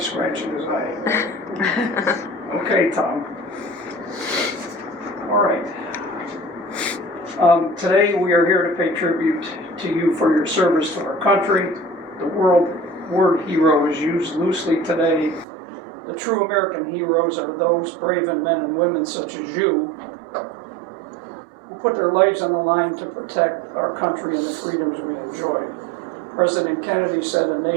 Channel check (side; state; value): left; drops out; at 15.5 s